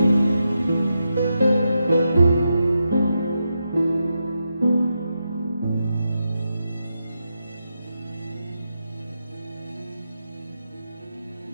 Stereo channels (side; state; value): both; inverted; correlation -0.86